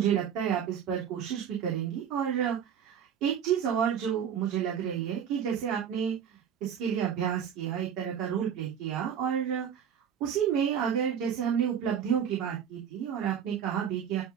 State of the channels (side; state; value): left; quieter; 8.5 dB